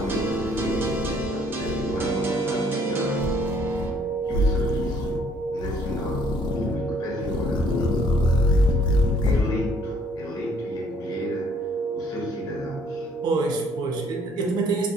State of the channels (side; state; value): both; normal; correlation 0.62